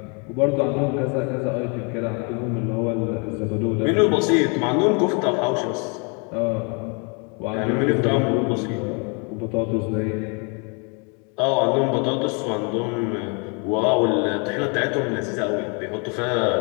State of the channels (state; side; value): quieter; right; 34.8 dB